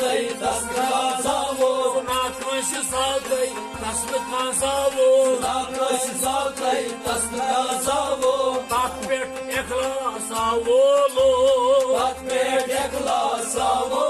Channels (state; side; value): identical; both; correlation 1.00